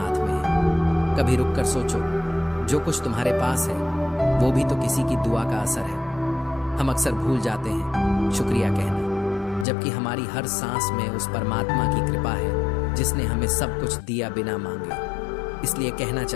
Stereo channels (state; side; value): drops out; right; at 9.7 s